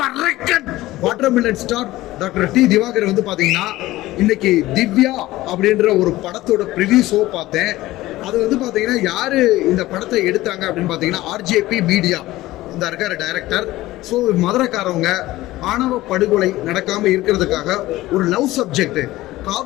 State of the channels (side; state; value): right; quieter; 17.1 dB